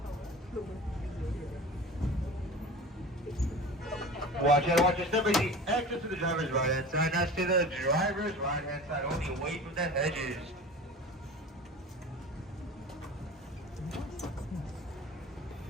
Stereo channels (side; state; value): both; normal; correlation 0.36